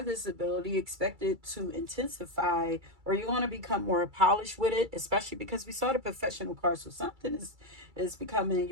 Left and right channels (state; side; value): late; left; 2.3 ms